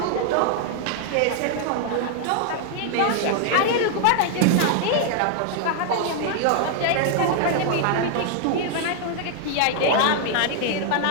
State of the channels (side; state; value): both; different; correlation 0.00